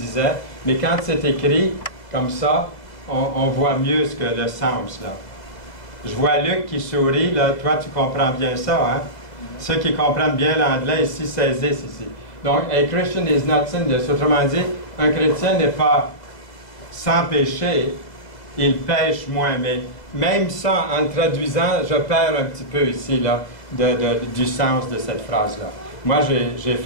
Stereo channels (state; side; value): late; right; 2.0 ms